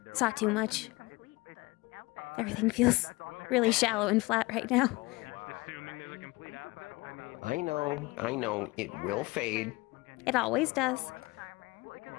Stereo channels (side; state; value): right; quieter; 22.9 dB